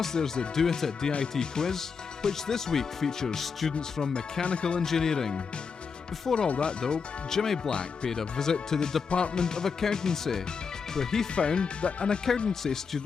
there's the Do It at DIT quiz, which this week features students from mechanical engineering. Before all that though, Jimmy Black paid a visit to the Department of Accountancy, where he found that an accountancy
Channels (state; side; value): quieter; right; 5.6 dB